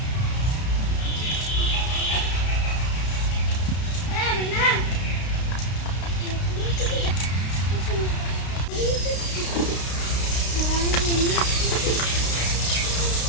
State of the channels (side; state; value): right; late; 32 ms